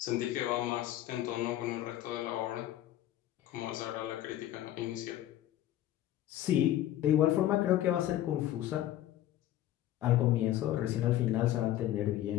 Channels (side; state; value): right; quieter; 13.2 dB